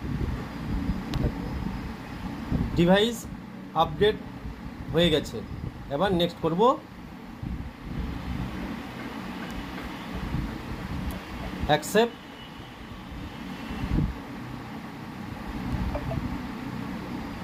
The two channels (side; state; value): both; identical; correlation 1.00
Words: ডিভাইস আপডেট হয়ে গেছে। এবার নেক্সট করব। অ্যাকসেপ্ট।